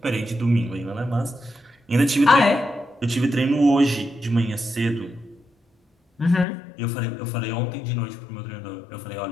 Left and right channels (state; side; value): drops out; right; at 6.5 s